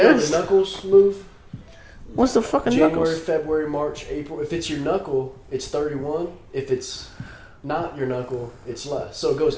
knuckles move? What's the fucking January, knuckles? February, March, April. If it's your knuckle, it's 31. If it's not your knuckle, it's less. So it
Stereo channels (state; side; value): identical; both; correlation 1.00